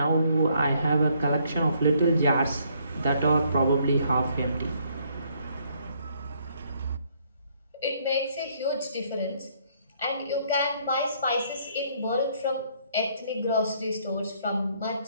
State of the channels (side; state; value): both; inverted; correlation -0.67